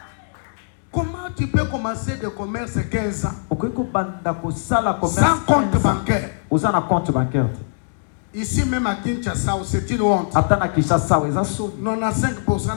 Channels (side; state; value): right; silent; digital silence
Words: Comment tu peux commencer de commerce 15 ans sans compte bancaire? Ici même à Kinshasa, c'est une honte. 95%